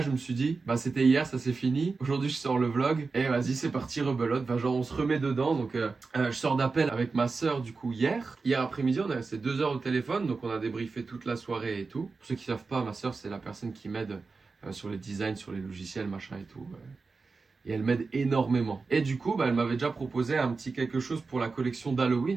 je me suis dit, c'était hier, ça c'est fini, aujourd'hui je sors le vlog et vas-y c'est parti, rebelote, genre on se remet dedans, donc je sors d'appel avec ma soeur du coup hier après-midi on a resté 2 heures au téléphone, donc on a débriefé toute la soirée et tout. Pour ceux qui savent pas, ma soeur c'est la personne qui m'aide sur les designs, sur les logiciels, machin et tout. Et elle m'aide énormément. Et du coup, elle m'avait déjà proposé un petit quelque chose pour la collection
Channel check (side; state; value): left; quieter; 4.3 dB